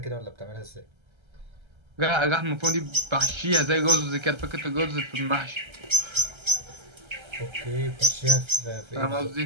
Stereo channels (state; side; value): late; left; 1.3 ms